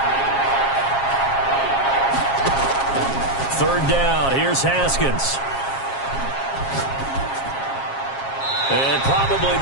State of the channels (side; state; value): right; late; 7.4 ms